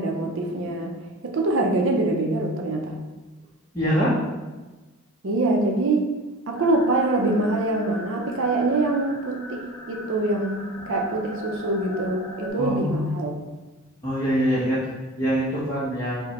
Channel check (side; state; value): both; normal; correlation 0.36